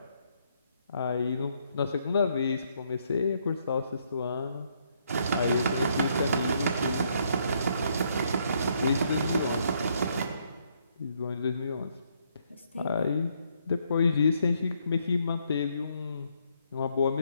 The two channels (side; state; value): both; inverted; correlation -0.72